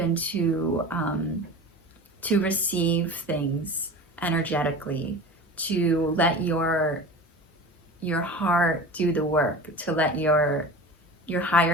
to receive things energetically, to let your heart do the work, to let your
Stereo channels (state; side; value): normal; both; correlation 0.34